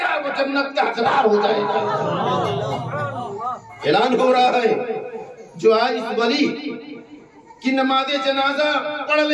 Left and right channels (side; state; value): both; identical; correlation 1.00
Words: گا وہ جنت کا حقدار ہو جائے گا۔ اعلان ہو رہا ہے جو آج اس ولی کی نماز جنازہ پڑھ